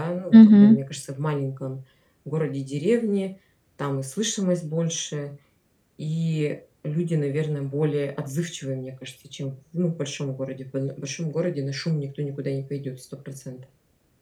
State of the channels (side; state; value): both; identical; correlation 1.00